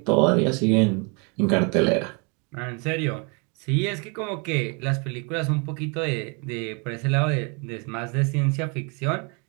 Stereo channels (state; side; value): quieter; left; 33.4 dB